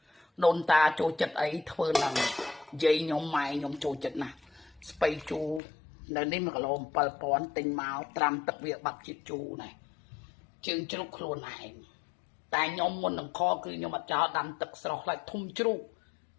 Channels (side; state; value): right; drops out; at 5.6 s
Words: đồn ta chỗ chật ấy thưa là dây nhóm mày nhóm chỗ chật nè spay chu nên đi mà cái lồng bờ pòn tình máu tram tập việc bạc chít chu này chừng chú luôn này tại nhóm muốn làm kho cứ nhóm mà cho đâm tập sọc lại thum chú